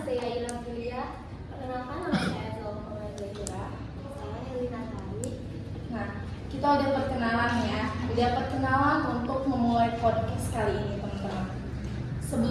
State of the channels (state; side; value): identical; both; correlation 1.00